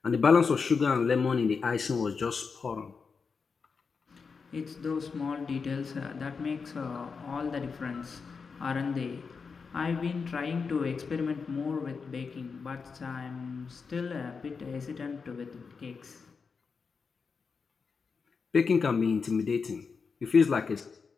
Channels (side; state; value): right; quieter; 5.2 dB